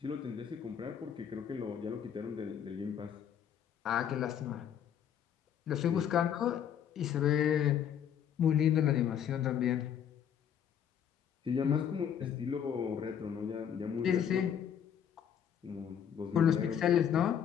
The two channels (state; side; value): quieter; right; 8.8 dB